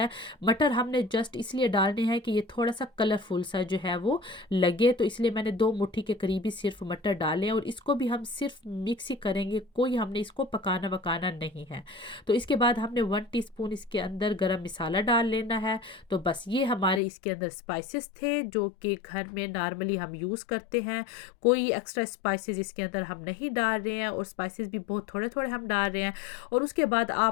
है। मटर हमने जस्ट इसलिए डालने हैं कि ये थोड़ा सा कलरफुल सा जो है वो लगे, तो इसलिए मैंने 2 मुट्ठी के करीब ही सिर्फ मटर डाले हैं। और इसको भी हम सिर्फ मिक्स ही करेंगे, कोई हमने इसको पकाना वकाना नहीं है। तो इसके बाद हमने 1 टीस्पून इसके अंदर गरम मसाला डाल लेना है। तो बस ये हमारे इसके अंदर स्पाइसेस थे जो कि घर में नॉर्मली हम यूज़ करते हैं। कोई एक्स्ट्रा स्पाइसेस इसके अंदर हम नहीं डाल रहे हैं, और स्पाइसेस भी बहुत थोड़े थोड़े हम डाल रहे हैं। और उसके बाद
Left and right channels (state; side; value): drops out; right; at 17.0 s